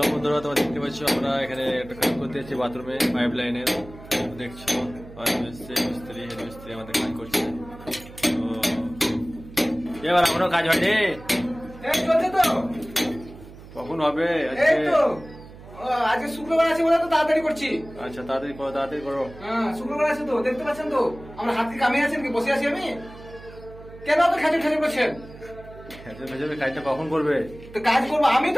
বন্ধুরা, তোমরা দেখতে পাচ্ছ আমরা এখানে একটা কাজ করতে যাচ্ছি বাথরুমে পাইপ লাইনের। দেখছো মিস্ত্রি হেড মিস্ত্রি আমাদের কাজ করছে। তো এবার এখনো কাজ হয়নি, কখন হবে? আজকে শুক্রবার আছে বলে তো তাড়াতাড়ি করছি। আচ্ছা তাড়াতাড়ি করো, তাড়াতাড়ি করো। হ্যাঁ শুক্রবার আছে তো, দেখতে পাচ্ছেন তো আমরা হাত কি কামিয়ে আছেন কি বসে আছি আমি? কেন তো খেজুর খেজুর করছেন? ভেজে কাজটা কখন করবে? তো কাজ করবো, আমি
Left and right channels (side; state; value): right; noise; hum, 18 dB below the sound